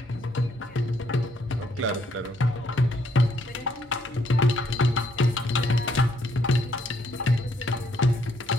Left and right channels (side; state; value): both; normal; correlation 0.71